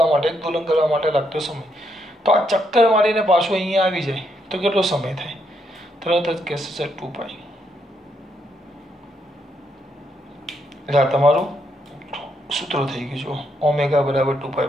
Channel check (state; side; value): normal; both; correlation 0.77